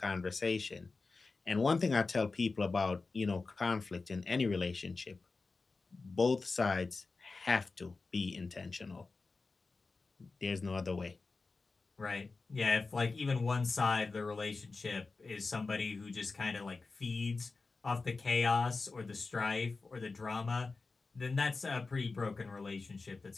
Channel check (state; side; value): quieter; right; 4.0 dB